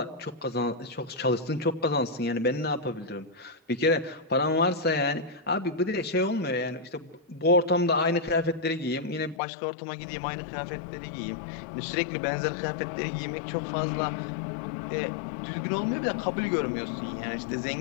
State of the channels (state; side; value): drops out; right; at 9.4 s